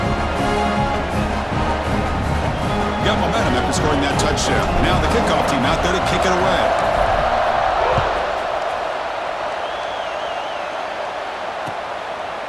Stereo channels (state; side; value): identical; both; correlation 1.00